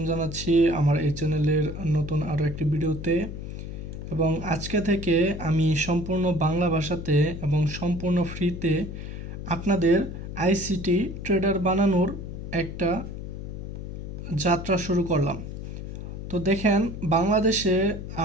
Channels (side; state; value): left; noise; hum, 8 dB below the sound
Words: জানাচ্ছি আমার এই চ্যানেলের নতুন আরও একটি ভিডিওতে। এবং আজকে থেকে আমি সম্পূর্ণ বাংলা ভাষাতে এবং সম্পূর্ণ ফ্রিতে আপনাদের আইসিটি ট্রেডার বানানোর একটা যাত্রা শুরু করলাম। তো দেখেন, বাংলাদেশে